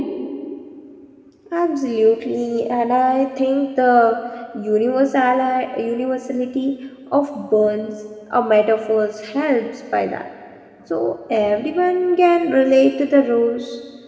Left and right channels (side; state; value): both; identical; correlation 1.00